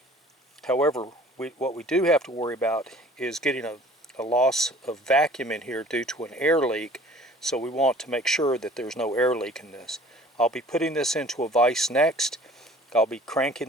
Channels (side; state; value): both; normal; correlation 0.49